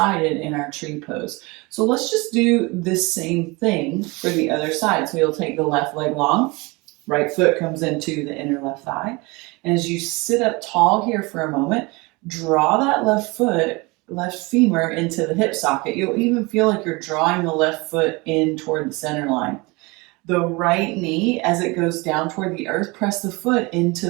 in our tree pose. So let's just do this same thing for the other side. So you'll take the left leg long, right foot comes into the inner left thigh. And as you sit up tall here for a moment, draw that left femur into the hip socket. You'll even feel like you're drawing the left foot in toward the center line. The right knee, as it goes down toward the earth, press the foot into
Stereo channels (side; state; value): left; quieter; 25.5 dB